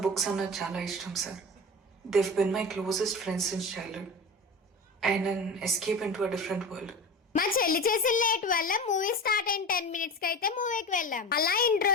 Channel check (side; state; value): both; normal; correlation 0.30